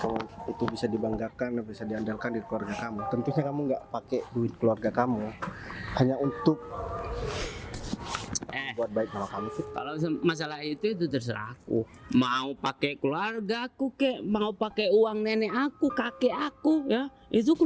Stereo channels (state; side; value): identical; both; correlation 1.00